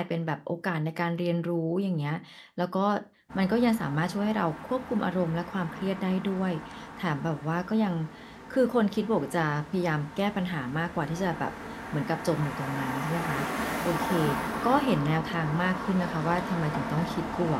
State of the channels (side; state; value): both; identical; correlation 1.00